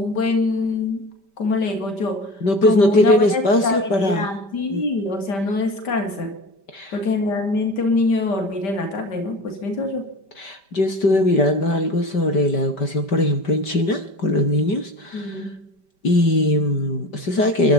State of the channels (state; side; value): late; right; 5.1 ms